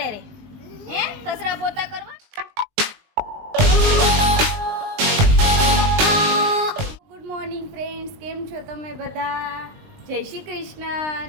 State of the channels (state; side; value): late; left; 20 ms